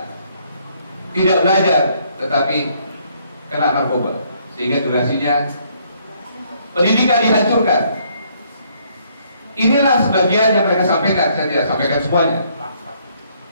tidak belajar tetapi kena narkoba, sehingga durasinya pendidikan dihancurkan. Inilah sebagian yang mereka sampaikan, saya tidak sampaikan semuanya.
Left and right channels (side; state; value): both; inverted; correlation -0.68